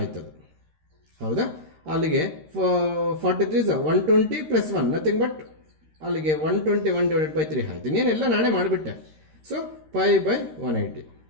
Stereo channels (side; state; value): left; late; 13 ms